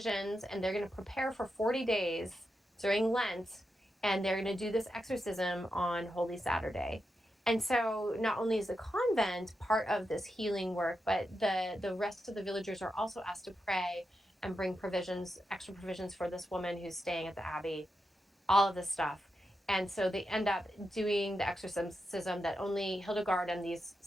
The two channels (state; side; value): normal; both; correlation 0.87